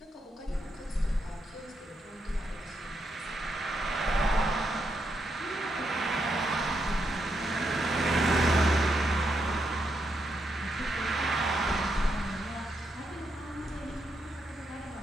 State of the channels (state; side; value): normal; both; correlation 0.81